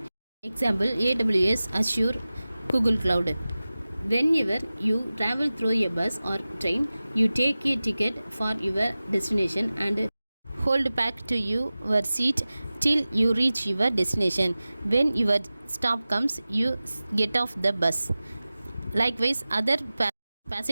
Example: AWS, Azure, Google Cloud. Whenever you travel through a bus or train, you take a ticket for your destination and hold back to your seat till you reach your destination. When your stop comes, you get off the bus. Likewise, other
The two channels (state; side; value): inverted; both; correlation -0.97